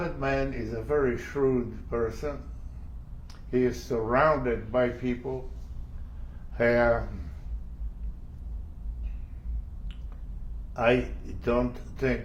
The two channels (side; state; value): both; identical; correlation 1.00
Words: man is a very shrewd person. He is surrounded by people who I don't